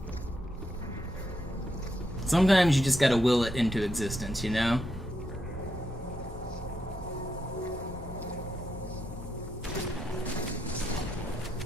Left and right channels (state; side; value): normal; both; correlation 0.81